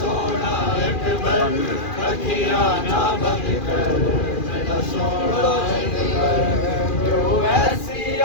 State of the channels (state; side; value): late; right; 2.4 ms